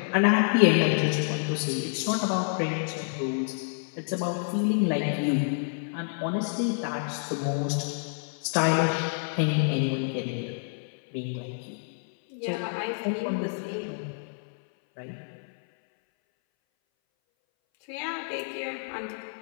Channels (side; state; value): right; silent; 59 dB below the other